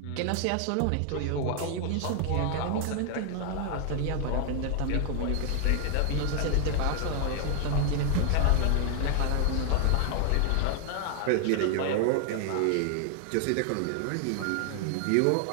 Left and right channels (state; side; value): different; both; correlation 0.00